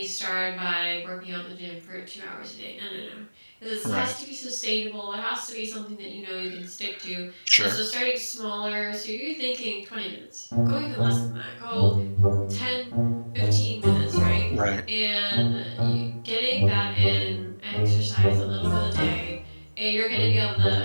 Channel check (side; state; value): both; inverted; correlation -1.00